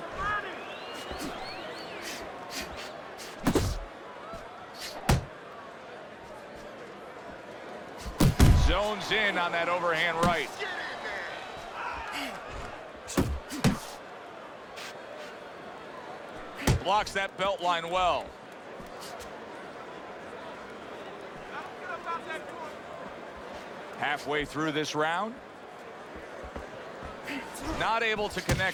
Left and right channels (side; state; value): both; identical; correlation 1.00